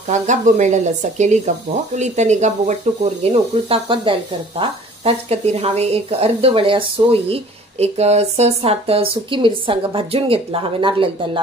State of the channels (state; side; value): normal; both; correlation 0.50